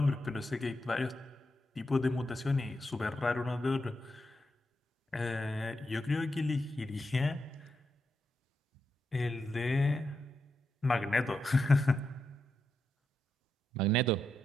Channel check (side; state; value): both; normal; correlation 0.85